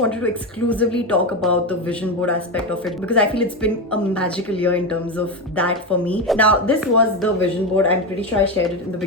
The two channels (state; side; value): normal; both; correlation 0.15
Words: to exclusively talk about the vision board aspect of it because I feel it's been a magical year in terms of that for me. Now, this was the vision board. I'm pretty sure I shared it in the